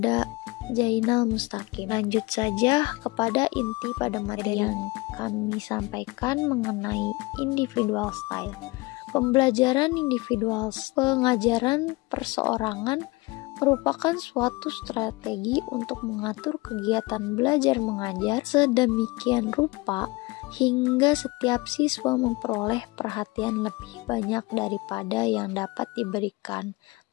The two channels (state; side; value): quieter; right; 23.5 dB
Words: Jainal Mustaqim. Lanjut saja kepada inti pada materi yang kami sampaikan mengenai individual style. Pembelajaran individual, pengajaran perseorangan merupakan suatu strategi untuk mengatur kegiatan belajar mengajar sedemikian rupa hingga setiap siswa memperoleh perhatian lebih banyak daripada yang dapat diberikan